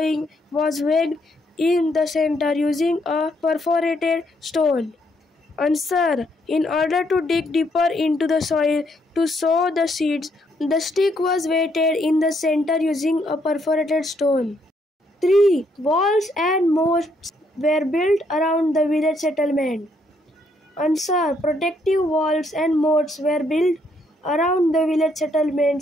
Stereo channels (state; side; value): normal; both; correlation 0.72